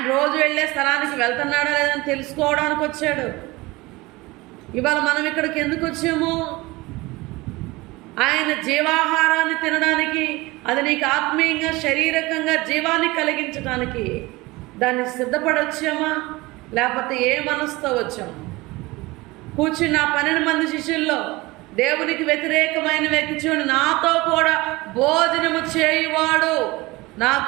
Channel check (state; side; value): quieter; left; 21.6 dB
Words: రోజు వెళ్ళే స్థలానికి వెళ్తున్నాడా లేదని తెలుసుకోవడానికి వచ్చాడు. ఇవాళ మనం ఇక్కడికి ఎందుకు వచ్చాము? ఆయన జీవాహారాన్ని తినడానికి, అది నీకు ఆత్మీయంగా శారీరకంగా జీవాన్ని కలిగించడానికి దాన్ని సిద్ధపడొచ్చామా, లేకపోతే ఏ మనసుతో వచ్చాము? కూర్చున్న 12 మంది శిష్యుల్లో దేవునికి వ్యతిరేకమైన వ్యక్తి చూడండి, నాతో కూడా భోజనము చేయువాడు